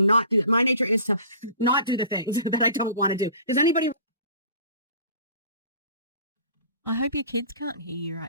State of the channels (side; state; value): both; inverted; correlation -0.45